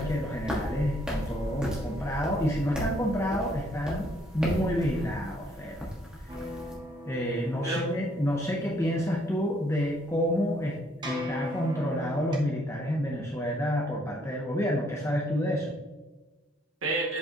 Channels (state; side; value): normal; both; correlation 0.67